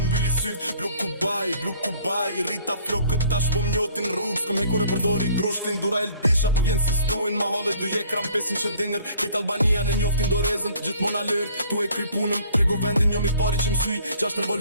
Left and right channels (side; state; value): both; inverted; correlation -0.54